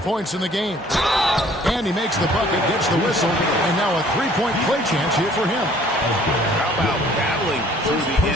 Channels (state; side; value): normal; both; correlation 0.56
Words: points in the game. And he makes the bucket, gets the whistle, and now a three-point play chance here for him. How about battling through the